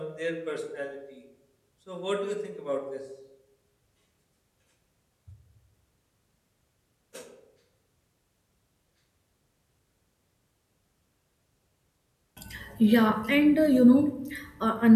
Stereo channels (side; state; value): both; identical; correlation 1.00